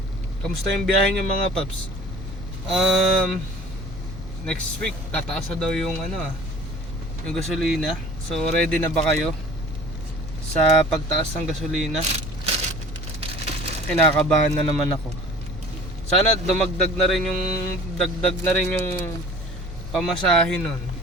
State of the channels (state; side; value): normal; both; correlation 0.46